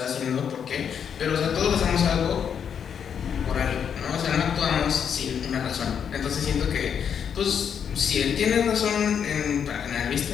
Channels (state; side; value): quieter; right; 7.7 dB